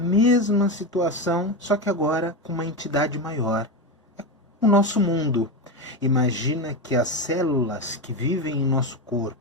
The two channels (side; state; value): both; normal; correlation 0.15